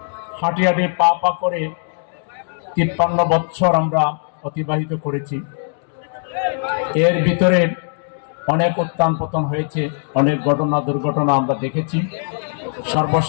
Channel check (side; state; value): right; silent; 61 dB below the other